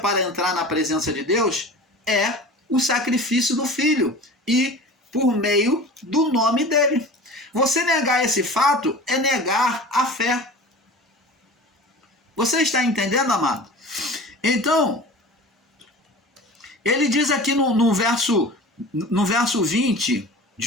entrar na presença de Deus é o sacrifício do Filho e por meio do nome dele. Você negar esse fato é negar a fé. Você está entendendo, amado? Então, ele diz aqui no verso 20,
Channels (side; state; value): both; normal; correlation 0.37